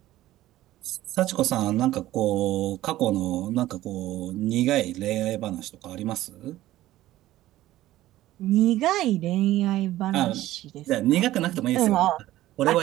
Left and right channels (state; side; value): quieter; left; 15.2 dB